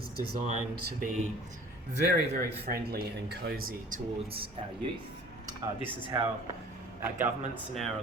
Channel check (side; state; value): both; normal; correlation 0.47